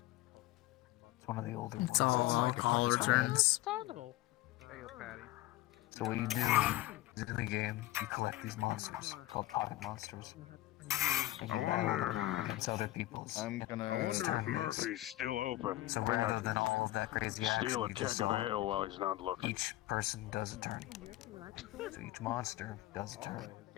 It's one of the older It's ones. all alcohol returns. Understandable. So what you do is in the game, you collect these monsters called pocket monsters. against other people's. I'm gonna. I wonder if Murphy's still open. So I think I rather could than all of that crazy action, steal a you keg just of saw ale while he's not looking. each person does a turn. So each monster does a turn.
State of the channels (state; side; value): quieter; right; 16.9 dB